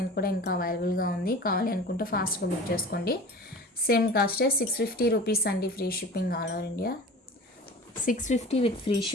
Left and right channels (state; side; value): normal; both; correlation 0.38